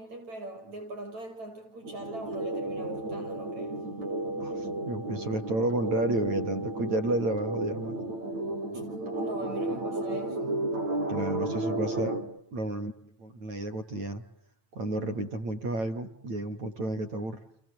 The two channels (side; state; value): left; late; 9.0 ms